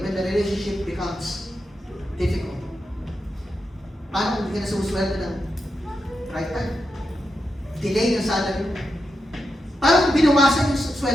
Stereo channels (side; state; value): both; normal; correlation 0.87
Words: when the relationship becomes difficult. Paano kung hindi ka na sumusweldo ng right time? Delay ng salary mo. Paano kung binawasan yung